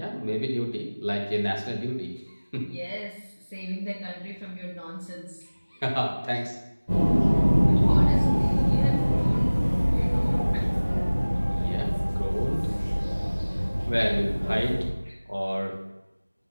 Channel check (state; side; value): inverted; both; correlation -1.00